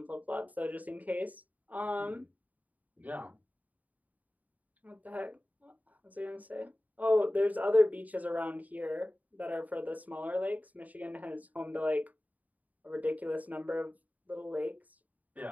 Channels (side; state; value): left; late; 0.075 ms